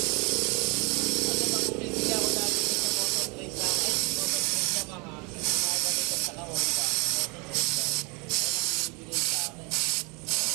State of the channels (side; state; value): left; quieter; 30.0 dB